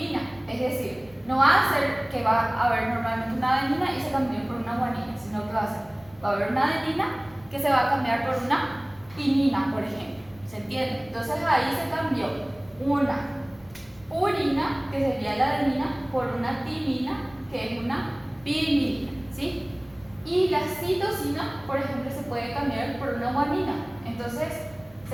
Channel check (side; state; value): left; noise; rumble, 25 dB below the sound